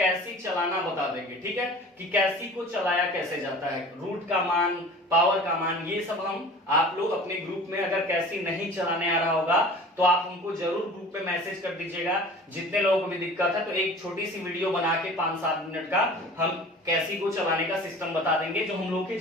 चलाना बता देंगे, ठीक है, कि कैसी को चलाया कैसे जाता है, रूट का मान, पावर का मान, ये सब हम आप लोग अपने ग्रुप में अगर कैसी नहीं चलाने आ रहा होगा तो आप हमको जरूर ग्रुप में मैसेज कर दीजिएगा। जितने लोगों को भी दिक्कत है तो एक छोटी सी वीडियो बना के 5-7 मिनट का हम कैसी को चलाने का सिस्टम बता देंगे जो हम लोग की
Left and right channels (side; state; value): both; normal; correlation 0.42